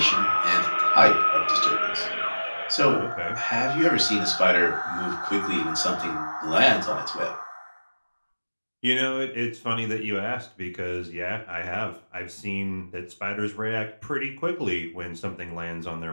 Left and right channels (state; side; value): inverted; both; correlation -1.00